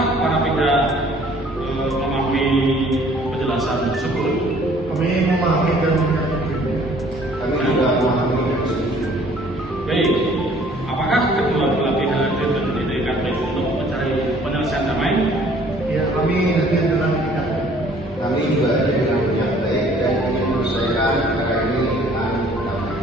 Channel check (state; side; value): normal; both; correlation 0.56